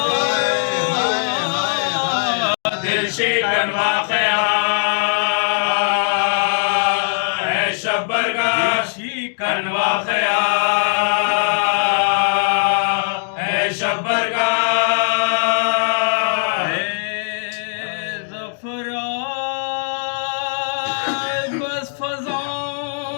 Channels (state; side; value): silent; right; digital silence